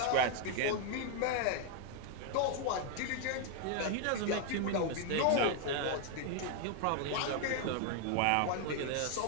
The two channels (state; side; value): different; both; correlation 0.00